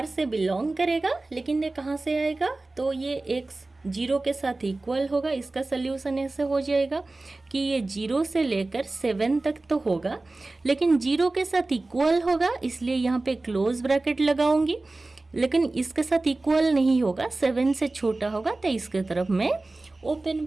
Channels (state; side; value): quieter; left; 3.1 dB